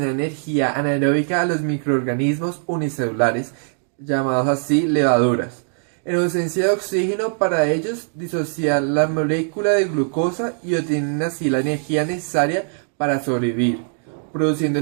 energía anaeróbica a los microorganismos unicelulares, llamados así levaduras. En ausencia de oxígeno para ellos, disocian la molécula de glucosa y obtienen así la energía necesaria para sobrevivir, produciendo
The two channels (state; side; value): silent; left; 65 dB below the other